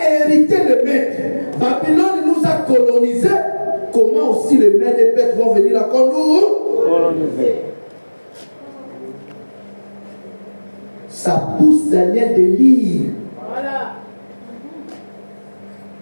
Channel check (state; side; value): inverted; both; correlation -1.00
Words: le maître. Babylone nous a colonisés. Comment aussi les Mèdes et Perses vont venir à coloniser? Ça pousse Daniel de lire. Voilà.